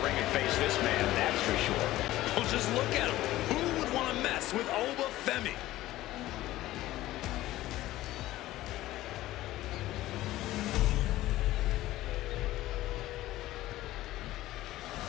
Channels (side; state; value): right; quieter; 15.9 dB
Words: ring and face this man, that's for sure. Well, just look at him. Who would want to mess with Oba Femi?